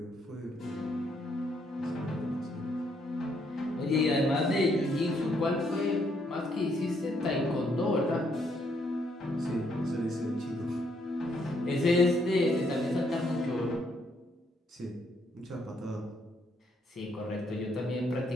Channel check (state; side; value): normal; both; correlation 0.72